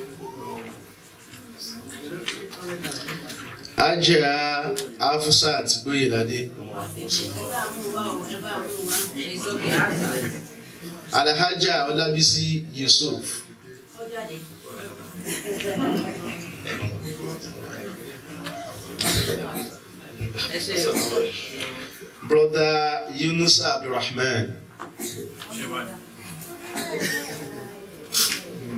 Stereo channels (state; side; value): identical; both; correlation 1.00